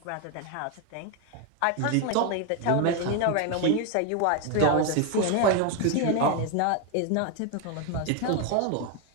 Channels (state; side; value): different; both; correlation 0.02